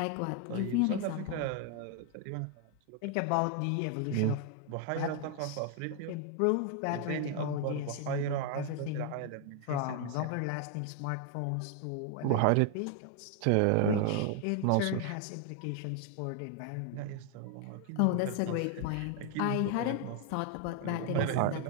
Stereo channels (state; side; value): different; both; correlation 0.01